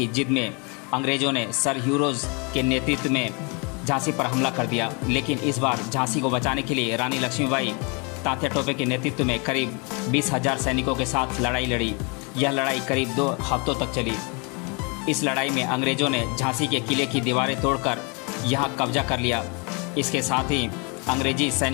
जिद में अंग्रेजों ने सर ह्यूरोज के नेतृत्व में झांसी पर हमला कर दिया, लेकिन इस बार झांसी को बचाने के लिए रानी लक्ष्मीबाई तात्या टोपे के नेतृत्व में करीब 20,000 सैनिकों के साथ लड़ाई लड़ी। यह लड़ाई करीब 2 हफ्तों तक चली। इस लड़ाई में अंग्रेजों ने झांसी के किले की दीवारें तोड़कर यहां कब्जा कर लिया। इसके साथ ही अंग्रेजी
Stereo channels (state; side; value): quieter; right; 32.3 dB